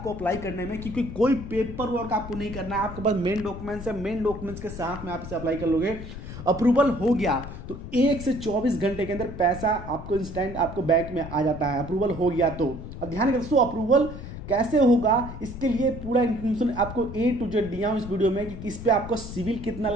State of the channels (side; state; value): left; noise; rumble, 10 dB below the sound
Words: अप्लाई करने में, क्योंकि कोई पेपर वर्क आपको नहीं करना है। आपके पास मेन डॉक्यूमेंट्स है, मेन डॉक्यूमेंट्स के साथ में आप इसे अप्लाई कर लोगे। अप्रूवल हो गया तो 1 से 24 घंटे के अंदर पैसा आपको इंस्टेंट आपको बैंक में आ जाता है। अप्रूवल हो गया तो अब ध्यान रखिए दोस्तों, अप्रूवल कैसे होगा इसके लिए पूरा इन्फॉर्मेशन आपको ए टू जेड दिया हूं इस वीडियो में कि इस पे आपको सिविल कितना